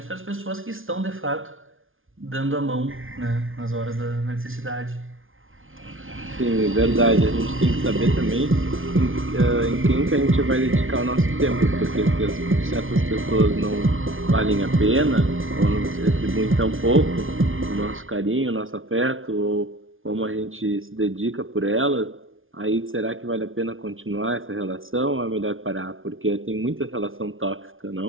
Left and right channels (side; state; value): left; late; 0.58 ms